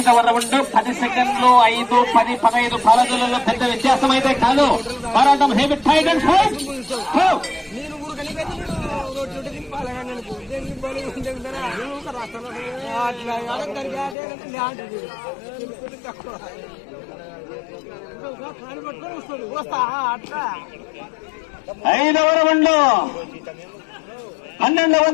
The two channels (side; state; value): right; drops out; at 14.2 s